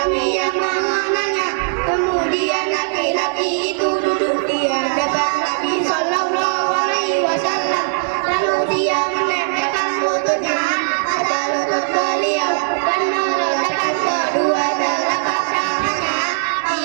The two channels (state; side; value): silent; left; digital silence